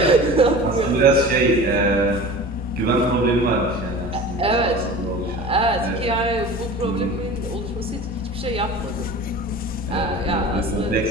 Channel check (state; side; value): normal; both; correlation 0.37